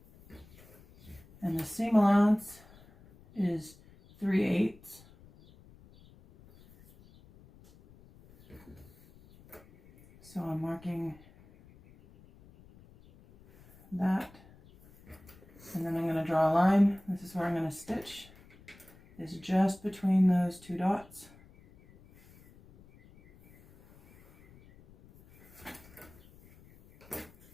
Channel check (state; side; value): noise; left; rumble, 25 dB below the sound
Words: And the seam allowance is 3/8. So I'm marking that. And then I'm going to draw a line. This is where I'm going to stitch. It's just between those 2 dots.